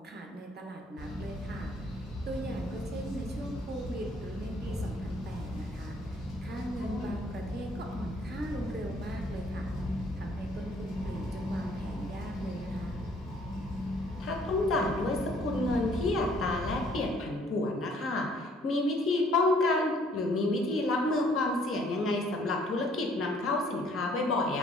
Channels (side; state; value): both; normal; correlation 0.62